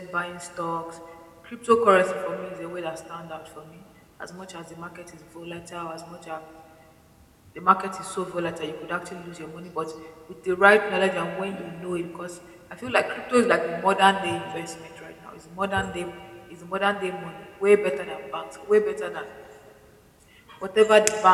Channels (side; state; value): both; identical; correlation 1.00